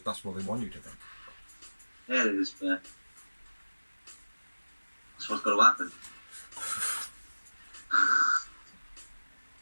they want you to think. Yeah, it is, but that's what's got to happen.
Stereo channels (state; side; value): inverted; both; correlation -1.00